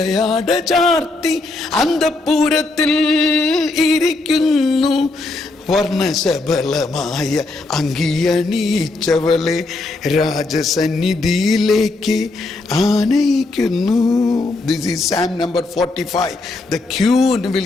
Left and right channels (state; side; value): quieter; right; 3.2 dB